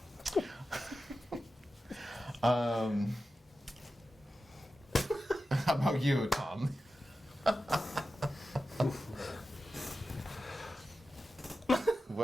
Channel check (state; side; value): normal; both; correlation 0.92